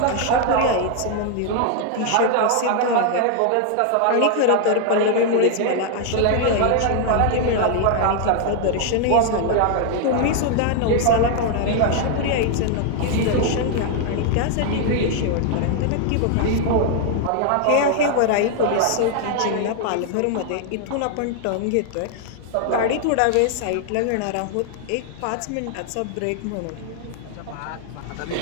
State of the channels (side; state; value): both; different; correlation 0.00